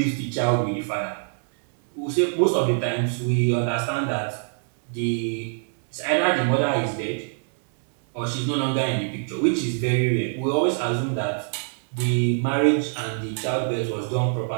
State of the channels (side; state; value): left; silent; 59 dB below the other